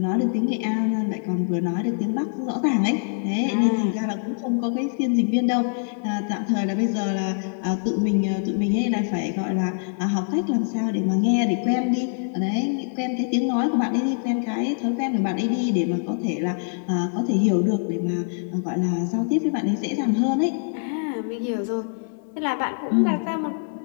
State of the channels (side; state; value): right; silent; digital silence